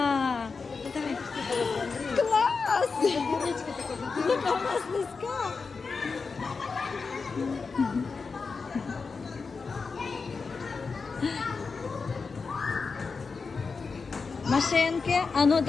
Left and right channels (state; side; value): quieter; right; 4.8 dB